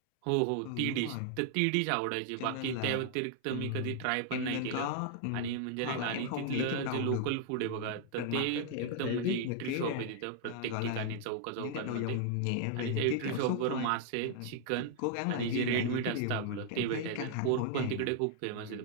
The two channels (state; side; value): different; both; correlation -0.01